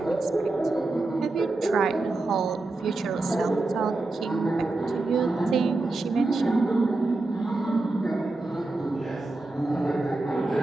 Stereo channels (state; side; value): quieter; left; 3.1 dB